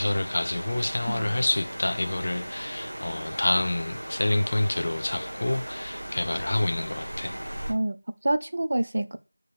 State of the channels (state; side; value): inverted; both; correlation -0.99